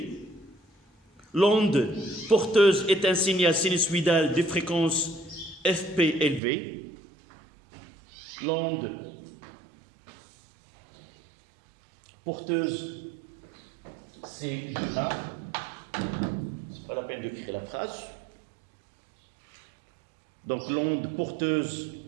L'onde porteuse est un signal sinusoïdal de fréquence FP élevée. L'onde porteuse, c'est 1. C'est pas la peine d'écrire la phrase. Donc l'onde porteuse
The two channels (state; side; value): drops out; left; at 6.4 s